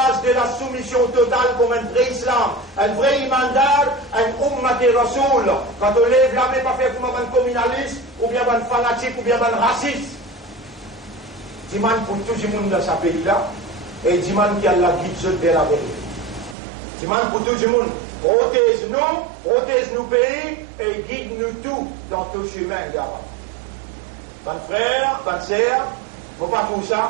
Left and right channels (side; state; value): left; drops out; at 16.6 s